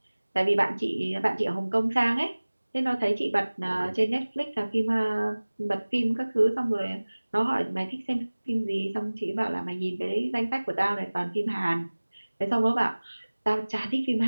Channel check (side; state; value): both; inverted; correlation -1.00